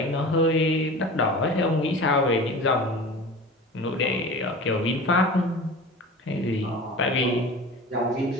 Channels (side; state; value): both; normal; correlation 0.36